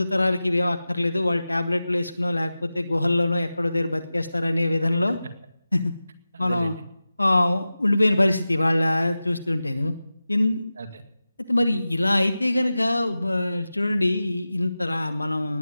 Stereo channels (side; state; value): both; inverted; correlation -0.95